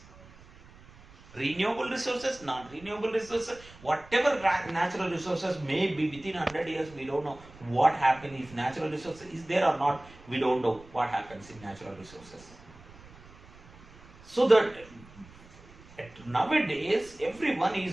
Renewable resources, non-renewable resources, whatever natural resources may be, within 100 years we don't know what happens. If natural resources is there or not, we don't know what happens in natural resources. So that nowadays everyone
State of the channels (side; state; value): right; noise; rumble, 22 dB below the sound